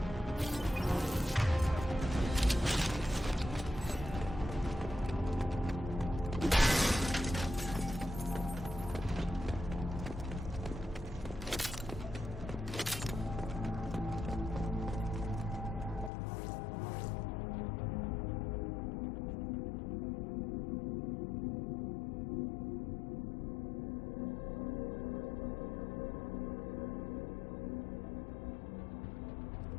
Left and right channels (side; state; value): right; drops out; at 16.1 s